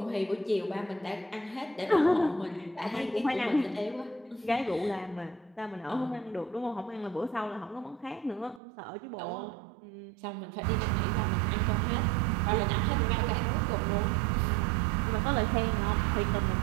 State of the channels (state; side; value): drops out; left; at 8.6 s